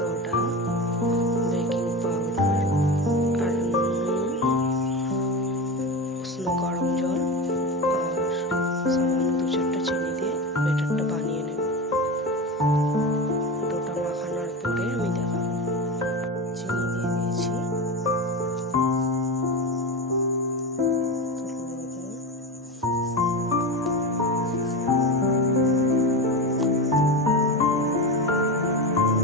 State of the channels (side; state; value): both; normal; correlation 0.22